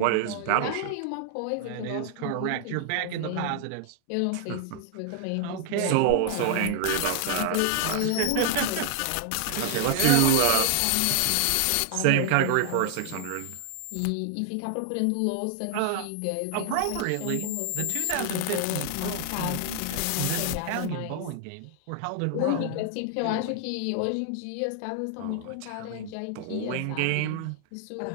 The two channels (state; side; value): different; both; correlation 0.00